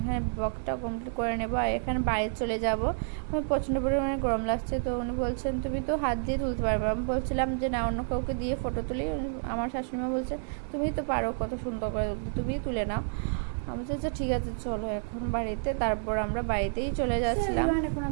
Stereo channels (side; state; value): left; silent; 57 dB below the other